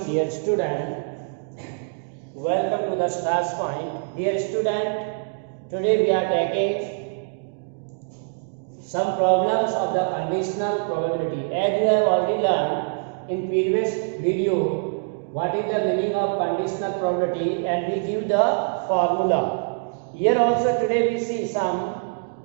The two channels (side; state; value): left; silent; digital silence